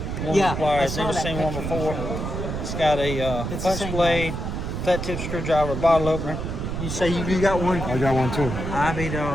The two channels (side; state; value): right; noise; rumble, 4 dB below the sound